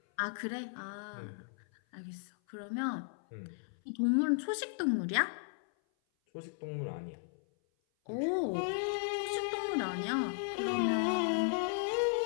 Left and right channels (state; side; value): silent; right; 54 dB below the other